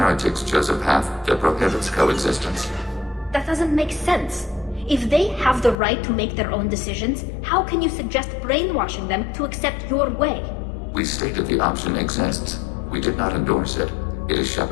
chose a path that prohibits coexistence. That doesn't make sense. If they have the right to make their own decisions, how can you suggest brainwashing them to accept your way? We stated the option exists. We did not endorse it. It is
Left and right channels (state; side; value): drops out; right; at 5.8 s